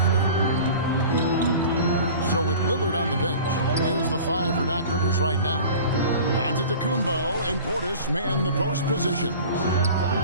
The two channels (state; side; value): inverted; both; correlation -0.40